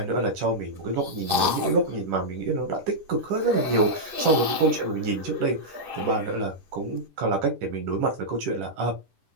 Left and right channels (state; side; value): late; left; 10 ms